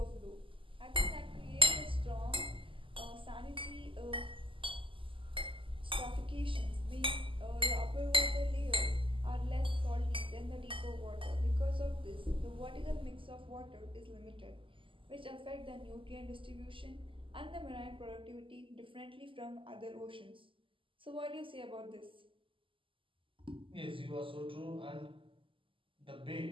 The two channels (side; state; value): left; late; 0.25 ms